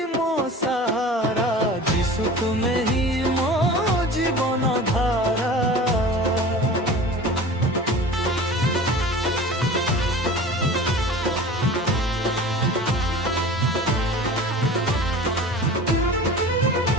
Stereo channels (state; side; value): normal; both; correlation 0.38